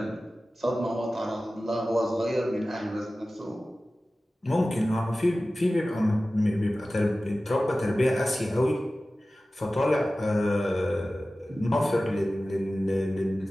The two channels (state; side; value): normal; both; correlation 0.96